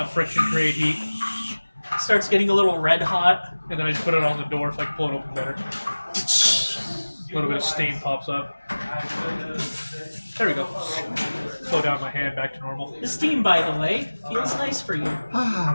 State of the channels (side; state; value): both; inverted; correlation -1.00